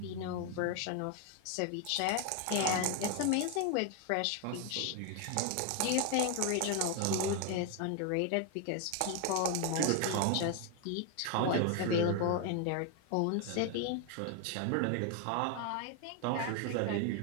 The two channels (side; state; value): both; different; correlation 0.01